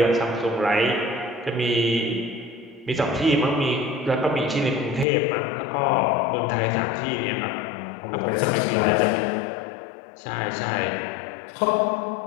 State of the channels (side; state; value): right; drops out; at 5.1 s